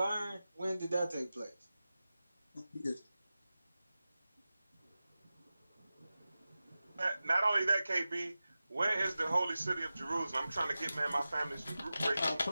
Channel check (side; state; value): both; inverted; correlation -0.95